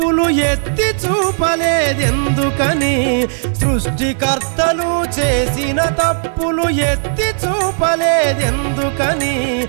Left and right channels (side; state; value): left; silent; digital silence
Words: ఎత్తి చూపలేదెందుకని సృష్టికర్తలు చేసిన తప్పులు ఎత్తి చూపలేదెందుకని